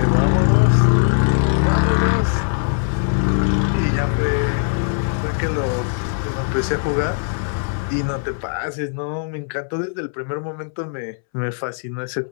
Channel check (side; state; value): right; silent; 66 dB below the other